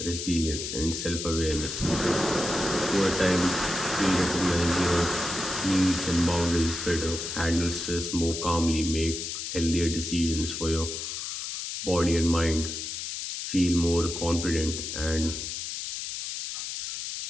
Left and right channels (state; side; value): noise; left; hiss, 5 dB below the sound